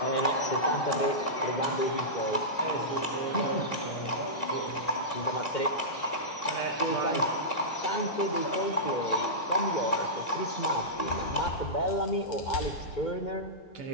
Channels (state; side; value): late; right; 2.1 ms